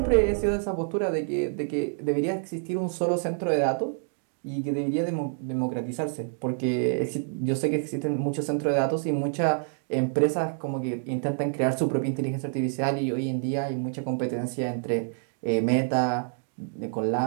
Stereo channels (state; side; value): silent; left; digital silence